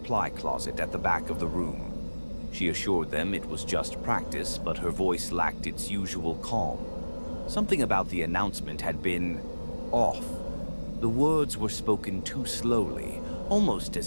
closet at the back of the room. She assured them it was just practice, but her voice lacked its usual calm. Something about the announcement had been off. The words were spoken too slowly, almost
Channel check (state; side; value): inverted; both; correlation -1.00